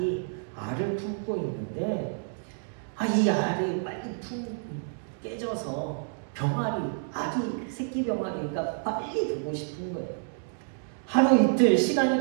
알을 품고 있는데 이 알이 빨리 깨져서 병아리, 아기 새끼 병아리가 빨리 보고 싶은 거예요. 하루 이틀 시간이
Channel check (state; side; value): silent; left; digital silence